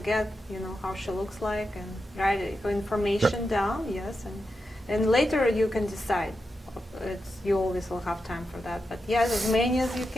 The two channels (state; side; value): normal; both; correlation 0.88